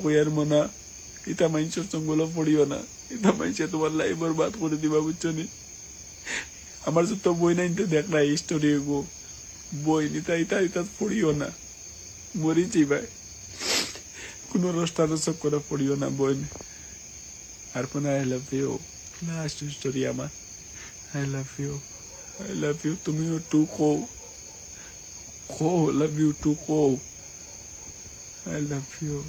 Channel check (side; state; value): left; noise; hiss, 30 dB below the sound